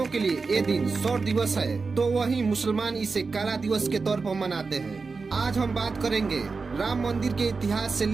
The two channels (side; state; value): left; quieter; 4.4 dB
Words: के लिए ये दिन शौर्य दिवस है, तो वहीं मुसलमान इसे काला दिवस के तौर पर मनाते हैं। आज हम बात करेंगे राम मंदिर के इतिहास से